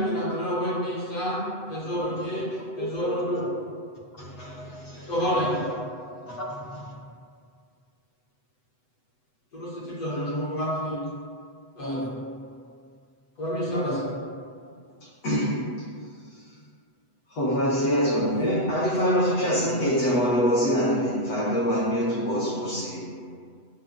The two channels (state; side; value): late; right; 8.0 ms